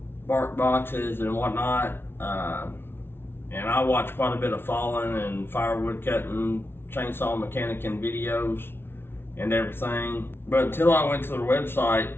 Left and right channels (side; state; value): right; late; 0.11 ms